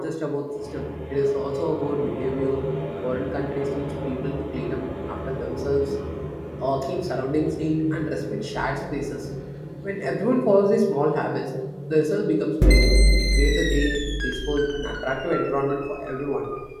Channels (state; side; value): identical; both; correlation 1.00